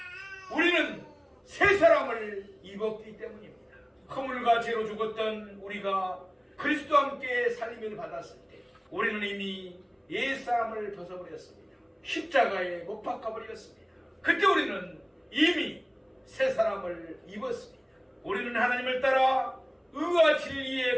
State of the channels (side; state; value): both; identical; correlation 1.00